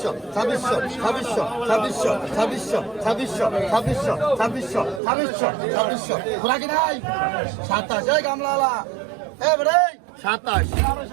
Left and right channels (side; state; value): left; drops out; at 5.0 s